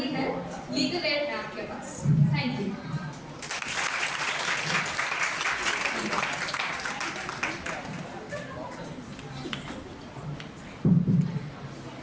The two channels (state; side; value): identical; both; correlation 1.00